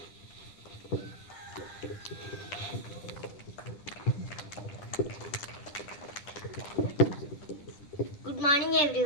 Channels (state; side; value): late; right; 10 ms